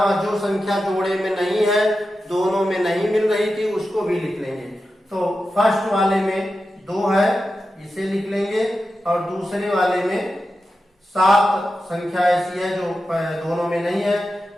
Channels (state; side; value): normal; both; correlation 0.91